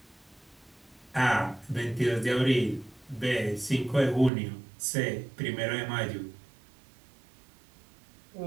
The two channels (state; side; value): drops out; left; at 4.3 s